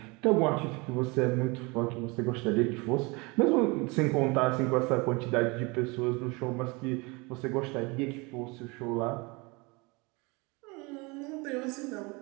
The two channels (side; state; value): left; quieter; 27.0 dB